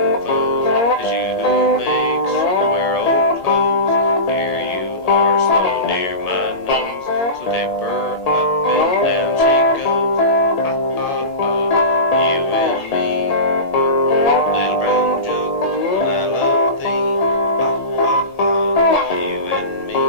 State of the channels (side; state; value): right; late; 1.8 ms